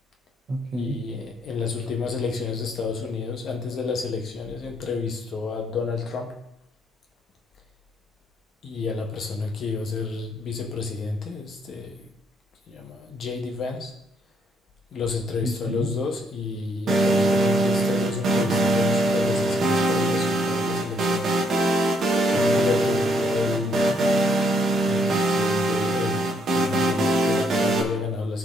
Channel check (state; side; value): normal; both; correlation 0.70